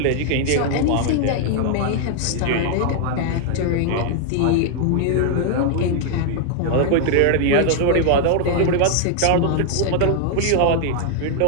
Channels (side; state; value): both; different; correlation 0.00